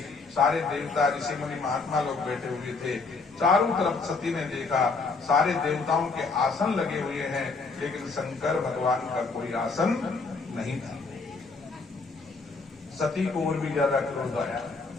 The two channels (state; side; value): quieter; right; 4.2 dB